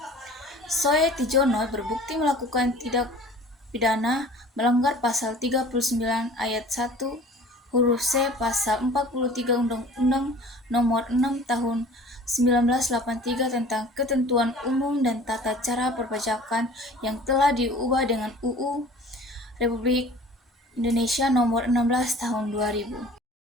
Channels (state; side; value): normal; both; correlation 0.46